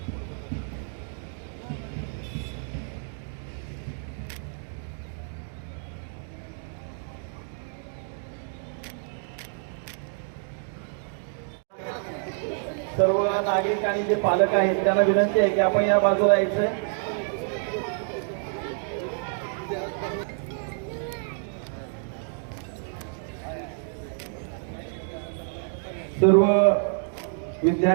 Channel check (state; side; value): silent; left; 60 dB below the other